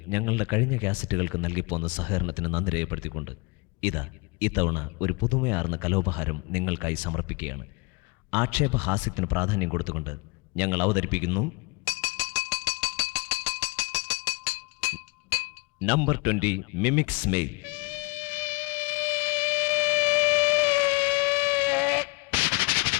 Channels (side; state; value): right; quieter; 27.8 dB